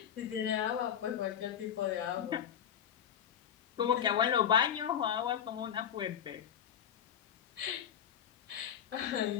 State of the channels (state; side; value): quieter; right; 9.0 dB